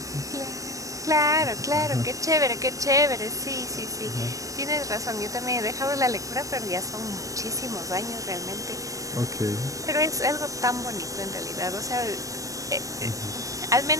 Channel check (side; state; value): left; late; 0.16 ms